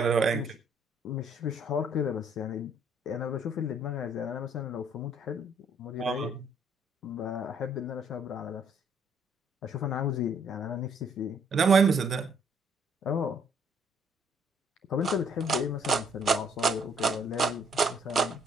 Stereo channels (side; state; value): both; normal; correlation 0.65